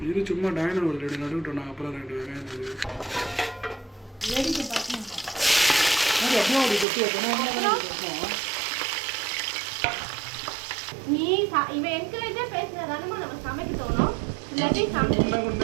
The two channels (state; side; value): drops out; left; at 6.9 s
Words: இது சும்மா டைனர் ஒரு 2 நடுவிட்டோம். நான் அப்புறம் 2 வெங்காயம் அப்படி கொட்டி வைக்கணும். நீ இவன் என்கரேஜாக பேசுனதானே நம்ம சமைக்க தோணும். இல்லாட்டி